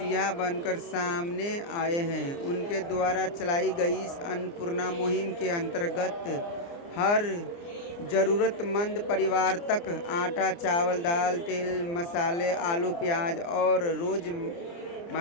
बनकर सामने आए हैं। उनके द्वारा चलाई गई इस अन्नपूर्णा मुहिम के अंतर्गत हर ज़रूरतमंद परिवार तक आटा, चावल, दाल, तेल, मसाले, आलू, प्याज और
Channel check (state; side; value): late; right; 29 ms